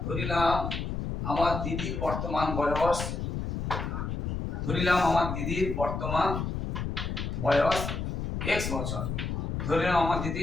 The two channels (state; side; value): noise; left; rumble, 3 dB below the sound